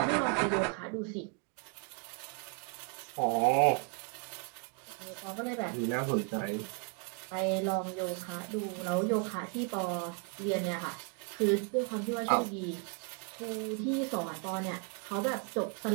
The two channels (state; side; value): quieter; left; 37.8 dB